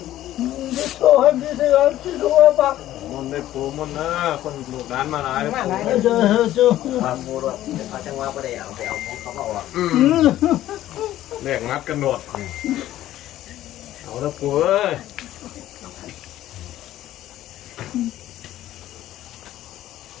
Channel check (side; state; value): right; quieter; 13.7 dB